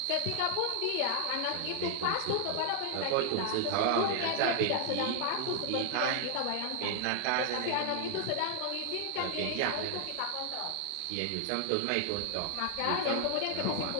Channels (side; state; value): both; different; correlation 0.00